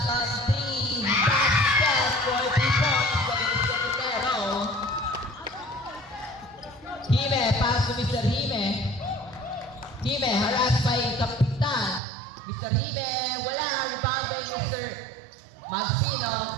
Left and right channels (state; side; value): drops out; left; at 12.0 s